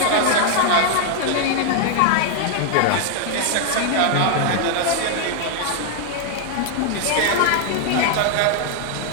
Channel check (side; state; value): both; different; correlation 0.00